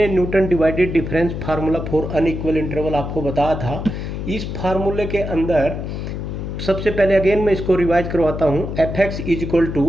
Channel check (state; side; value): noise; left; hum, 5 dB below the sound